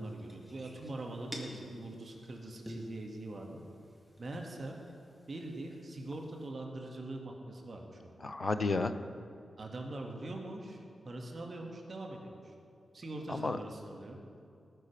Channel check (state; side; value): normal; both; correlation 0.86